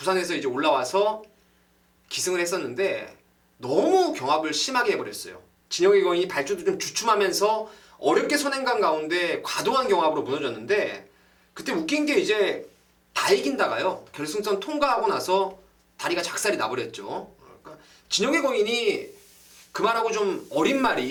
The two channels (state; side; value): identical; both; correlation 1.00